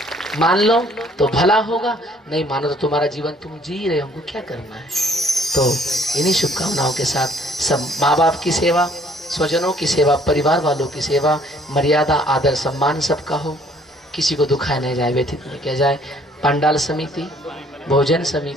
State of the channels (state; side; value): normal; both; correlation 0.60